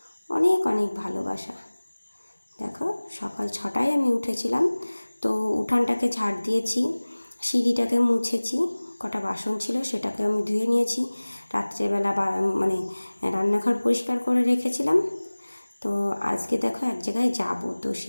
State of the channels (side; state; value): both; inverted; correlation -1.00